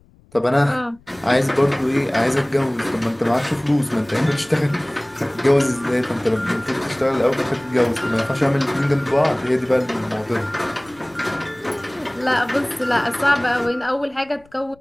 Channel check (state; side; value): noise; left; rumble, 30 dB below the sound